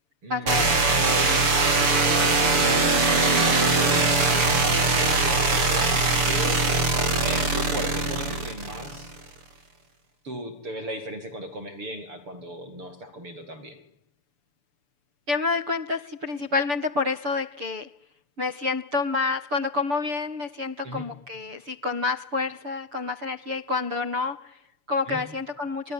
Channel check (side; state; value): left; late; 6.9 ms